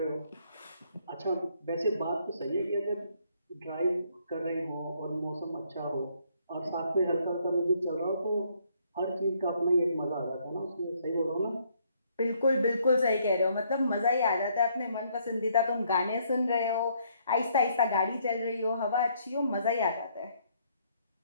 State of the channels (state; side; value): inverted; both; correlation -0.68